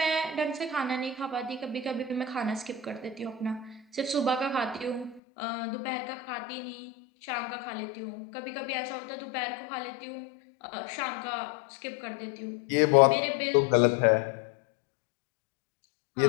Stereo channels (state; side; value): drops out; right; at 5.2 s